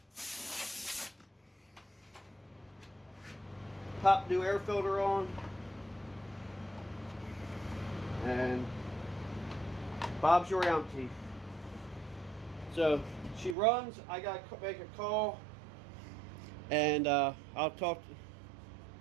Pop new air filter on. And Bob's your auntie. So she runs. I got to make a call. And I'll talk.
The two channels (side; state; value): left; drops out; at 13.6 s